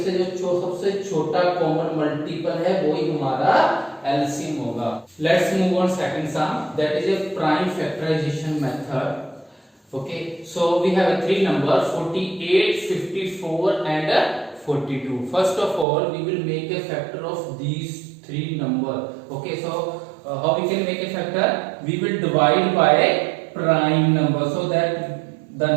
से जो सबसे छोटा कॉमन मल्टीपल है वही हमारा एलसीएम होगा. Let's move on second sum, that is a prime factorization method. Okay, so we have a three number 48, 54 and 42. First of all we will make a factor of these three number. Okay, so how we can make a factor? We will divide by prime number, so that the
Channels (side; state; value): left; drops out; at 15.9 s